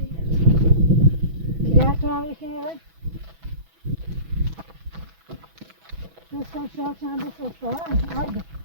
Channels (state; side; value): late; left; 6.1 ms